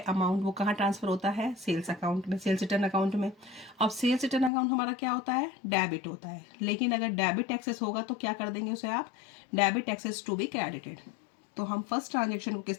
अमाउंट वो कहाँ ट्रांसफर होता है, सेल्स अकाउंट में, सेल्स रिटर्न अकाउंट में. अब सेल्स रिटर्न अकाउंट हमारा क्या होता है, डेबिट होता है. लेकिन अगर डेबिट एक्सेस होगा तो क्या कर देंगे उसे आप, debit excess to be credited. तो हम फर्स्ट ट्रांजेक्शन को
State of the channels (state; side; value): drops out; right; at 4.5 s